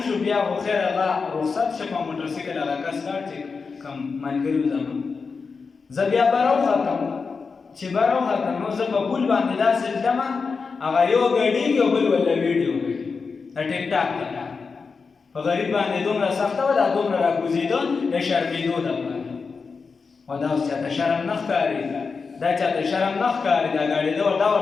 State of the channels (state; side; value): quieter; right; 4.9 dB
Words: بیا خو خیر هغه رخصت شه په موټر سایکل هغه کس لاړ چې کوم ملګري وو زما زه بیا بره وختم چې بره وختم نو زه په پول باندې داسې تلمه هغه یو ګډېږي او بل وله ویډیو کوي د ټیک ټاک ته په غریب باندې دومره سخته وه دا دومره راکوزېده د شرمېدو دپاره خو دا اوس چاته شرم نه ښکاري دا چاته شرم نه ښکاري دا ګاډېده دا